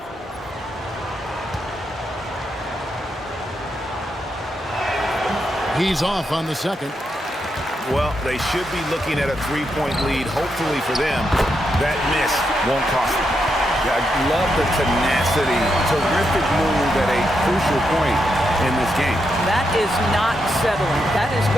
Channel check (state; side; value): normal; both; correlation 0.82